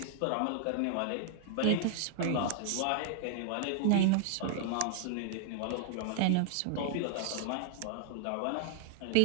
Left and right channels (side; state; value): both; different; correlation -0.01